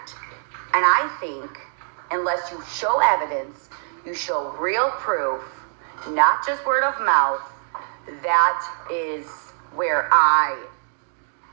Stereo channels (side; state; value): left; silent; digital silence